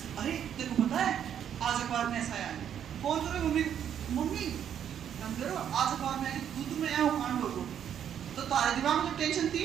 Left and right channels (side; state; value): left; quieter; 9.2 dB